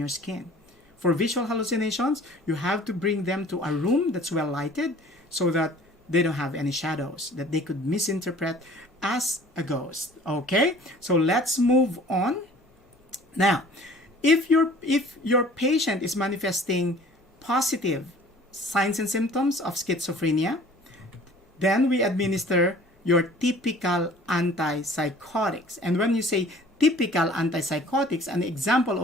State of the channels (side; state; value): both; normal; correlation 0.49